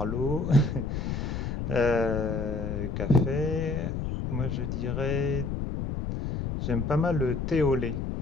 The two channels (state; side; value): noise; left; rumble, 3 dB below the sound